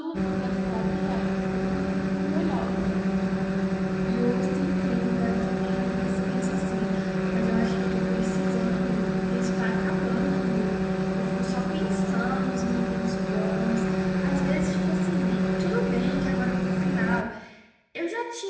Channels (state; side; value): identical; both; correlation 1.00